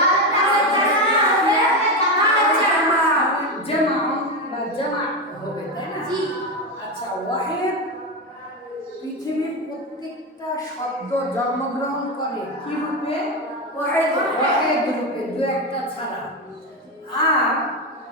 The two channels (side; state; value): both; normal; correlation 0.14